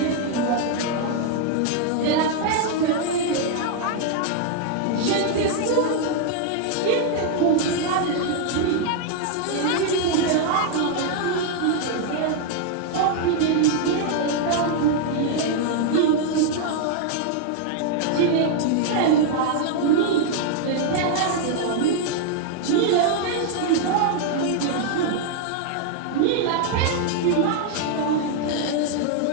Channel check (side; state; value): both; different; correlation 0.00